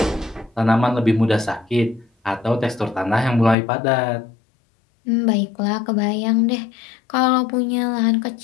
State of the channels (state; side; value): drops out; right; at 3.6 s